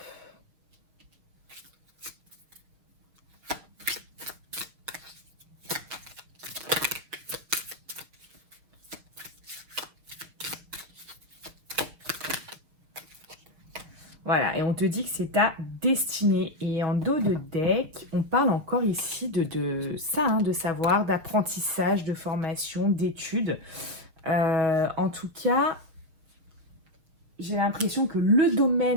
Voilà, et on te dit que c'est ta destinée. Et en dos de deck, on parle encore ici de ça, hein, de savoir, d'apprentissage, de formation, d'études. En tout cas, j'ai l'impression que le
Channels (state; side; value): late; left; 6.1 ms